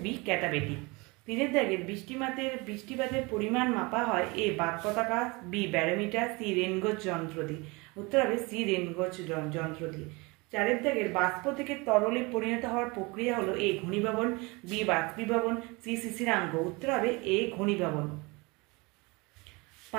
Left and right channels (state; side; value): quieter; left; 26.0 dB